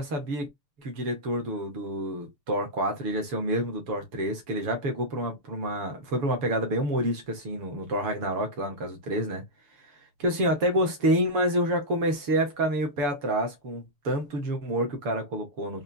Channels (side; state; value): left; late; 7.0 ms